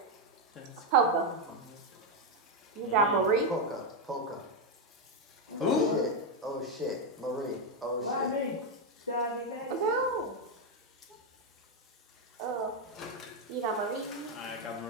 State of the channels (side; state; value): both; normal; correlation 0.04